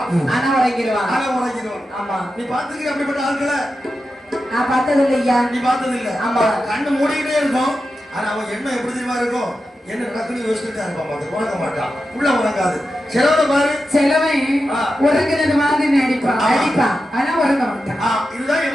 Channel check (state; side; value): normal; both; correlation 0.90